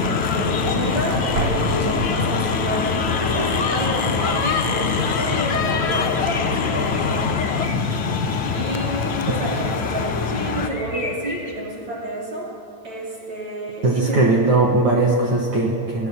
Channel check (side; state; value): left; late; 9.0 ms